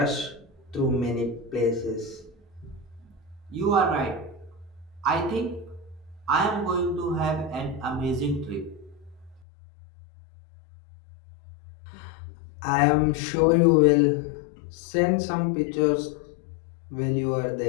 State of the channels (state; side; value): drops out; right; at 9.4 s